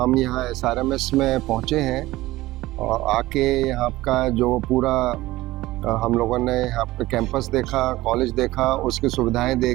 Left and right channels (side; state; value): left; quieter; 17.7 dB